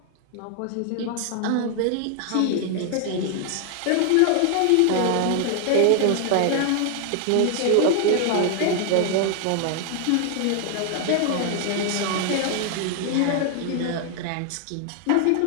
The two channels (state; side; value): different; both; correlation 0.00